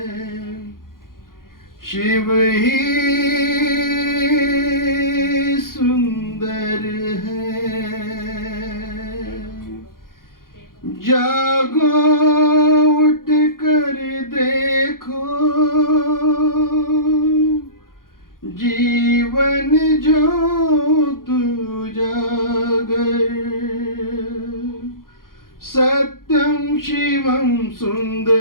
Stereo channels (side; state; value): right; late; 0.91 ms